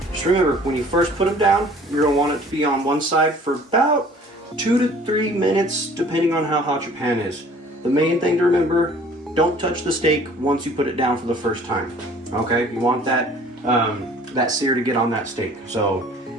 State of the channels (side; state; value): both; normal; correlation 0.51